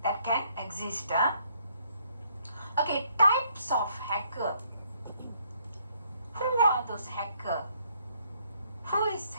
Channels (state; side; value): inverted; both; correlation -0.68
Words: can exist. Okay, types of hacker. Who are those hacker? Who is